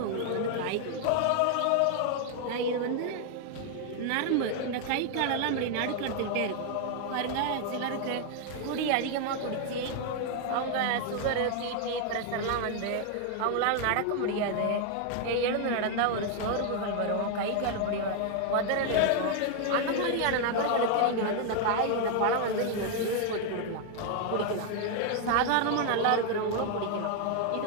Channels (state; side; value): different; both; correlation 0.00